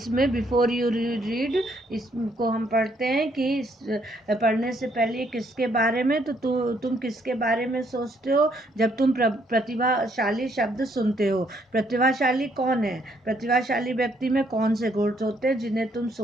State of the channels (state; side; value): normal; both; correlation 0.70